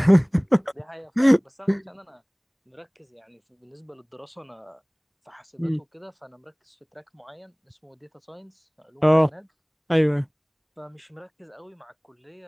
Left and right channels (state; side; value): identical; both; correlation 1.00